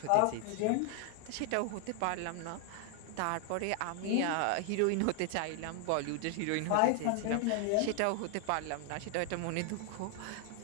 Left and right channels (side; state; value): both; different; correlation 0.00